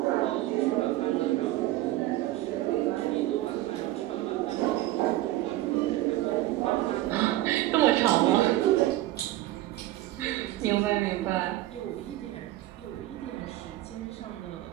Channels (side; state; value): left; quieter; 16.0 dB